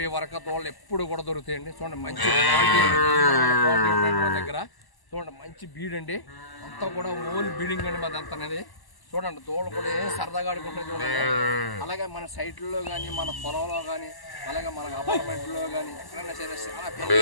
వరకు తోళ్ళు ఎప్పుడు కూడా దొరుకుతాయండి. చూడండి మంచి క్వాలిటీ ఉంటాయండి మా దగ్గర. చూడండి మంచి బీడ్ అండి. అంతా కూడా ఓల్ బీడింగ్ అండి మాది అంత అనేది. చూడండి తోళ్ళు కూడా ఏం సరదాగా ఆడుకుంటుంది చూడండి. అలాగే మన సైట్లలో కానీ మన పొలంలో కానీ అలాగే మన అపార్ట్మెంట్లో కానీ ఎక్కడైనా సరే చాలా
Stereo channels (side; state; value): right; late; 1.1 ms